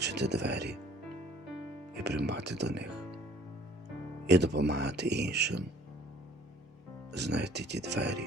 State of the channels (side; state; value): both; normal; correlation 0.54